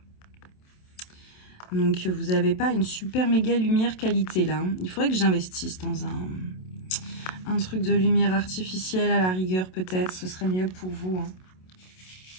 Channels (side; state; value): right; late; 27 ms